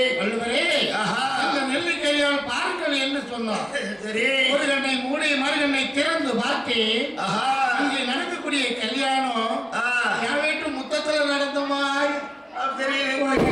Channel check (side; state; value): both; identical; correlation 1.00